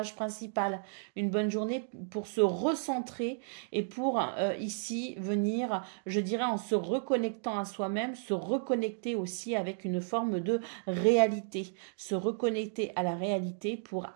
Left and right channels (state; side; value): silent; left; digital silence